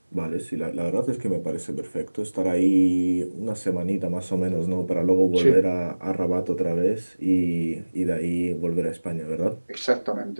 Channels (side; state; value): both; inverted; correlation -1.00